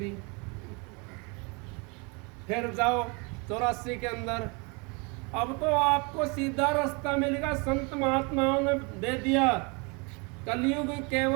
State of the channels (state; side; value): quieter; left; 30.9 dB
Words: फिर जाओ 84 के अंदर, अब तो आपको सीधा रास्ता मिलेगा, संत महात्माओं ने दे दिया। कलयुग